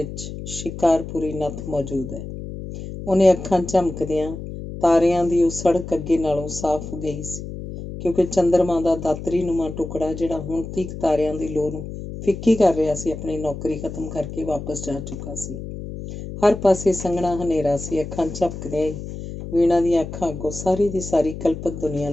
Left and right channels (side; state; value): left; noise; hum, 9 dB below the sound